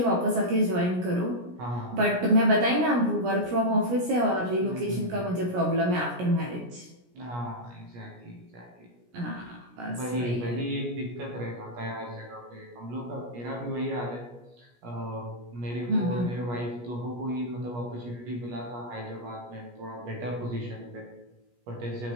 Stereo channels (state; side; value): late; left; 17 ms